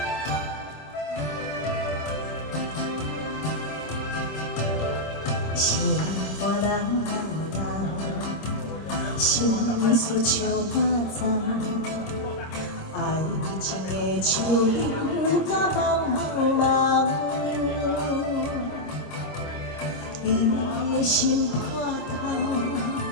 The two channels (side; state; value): right; late; 26 ms